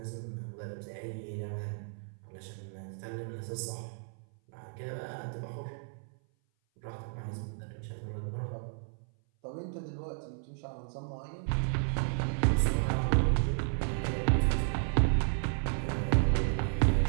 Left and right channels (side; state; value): left; silent; 56 dB below the other